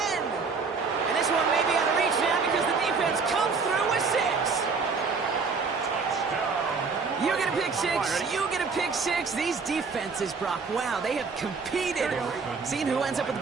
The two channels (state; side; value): quieter; left; 4.8 dB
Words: And this one may be out of reach now because the defense comes through with 6. You get a pick 6. You get a pick 6. These defenses, Brock, wow, they have competed. Seeing who ends up with the